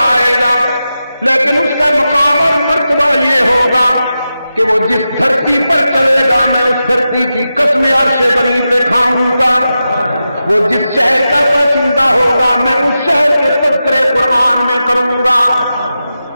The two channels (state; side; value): inverted; both; correlation -0.90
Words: آئے گا، لیکن اس کا مقام اور مرتبہ یہ ہوگا کہ وہ جس دھرتی پر چلے گا میں اس دھرتی کی قسم عرش بری پہ کھاؤں گا. وہ جس شہر کا باشندہ ہوگا میں اس شہر کے تذکرے قرآن میں کروں گا.